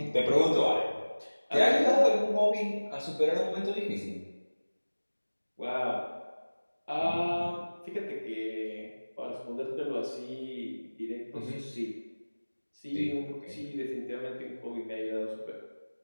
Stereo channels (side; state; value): both; inverted; correlation -1.00